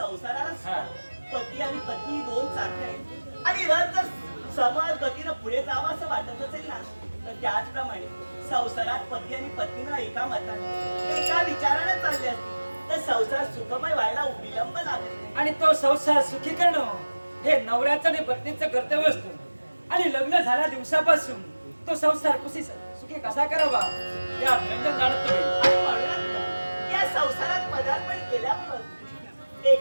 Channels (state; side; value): inverted; both; correlation -1.00